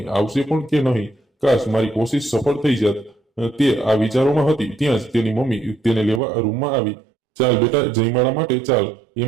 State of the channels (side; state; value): left; drops out; at 6.2 s